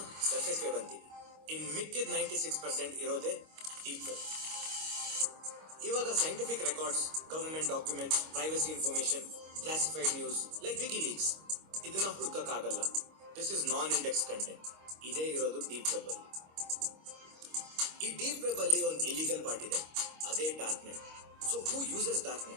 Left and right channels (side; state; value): left; late; 25 ms